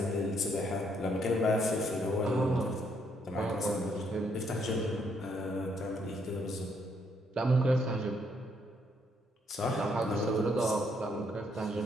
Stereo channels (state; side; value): normal; both; correlation 0.72